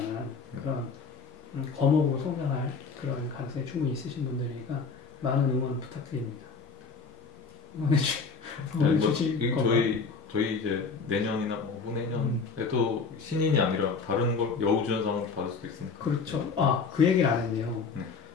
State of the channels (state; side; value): quieter; right; 4.9 dB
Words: 그런 거목으로 성장할 그런 가능성이 충분히 있으신 분들이니까 많은 응원 부탁드립니다. 응원해 주실 건가요? 저희 이제 내년이나 후내년에도 신인이 아니라 다른 걸 여우주연상을 받을 수도 있으니까. 그렇죠. 그 얘기를 안 했네요.